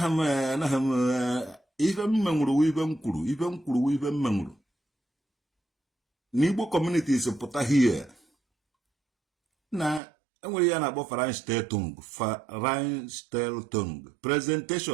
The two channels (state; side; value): drops out; left; at 10.0 s